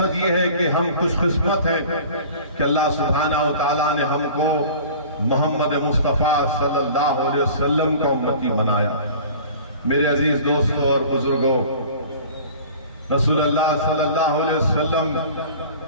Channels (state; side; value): inverted; both; correlation -0.43